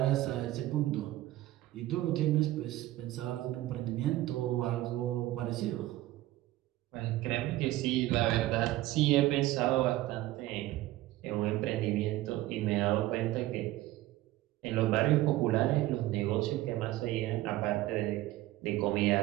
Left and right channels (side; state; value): left; quieter; 16.2 dB